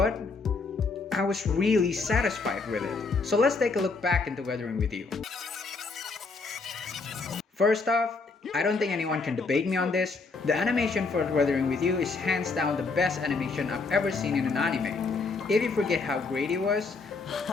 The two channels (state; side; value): quieter; right; 4.1 dB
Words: I was really satisfied with it. So let's take a look back into Weathering with You. First off, I don't think anyone can debate me on this. The animation for Weathering with You is hands down the best animation I've ever seen in an anime. If you forget how great it was,